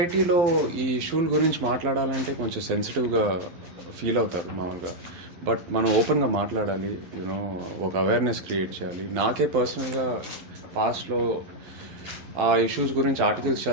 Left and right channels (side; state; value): left; late; 12 ms